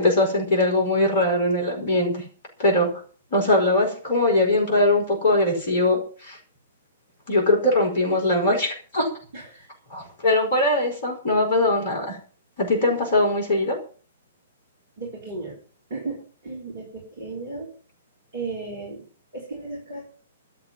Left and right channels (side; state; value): both; inverted; correlation -0.42